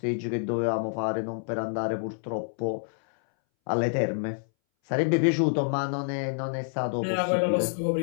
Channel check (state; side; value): silent; right; 60 dB below the other